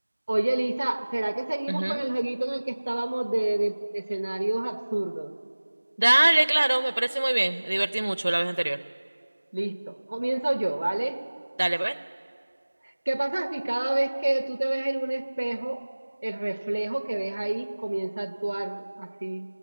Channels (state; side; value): inverted; both; correlation -1.00